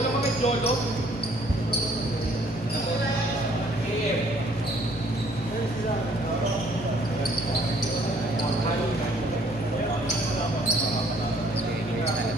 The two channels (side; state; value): both; normal; correlation 0.61